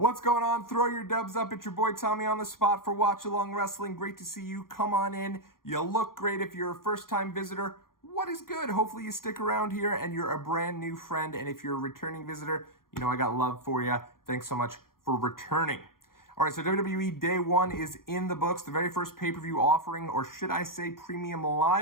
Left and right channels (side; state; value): right; late; 0.91 ms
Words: going on? Throw your dubs up. It's your boy Tommy on the spot for Watchalong Wrestling. Great to see you. Come on in. You look great if you're a first-time visitor. What is good? Hopefully you stick around here and you're a brand new friend. And if you're a returning visitor, you know I got love for you. Thanks so much for returning. All right, so WWE Day 1 is in the books. The very first pay-per-view offering, or should I say premium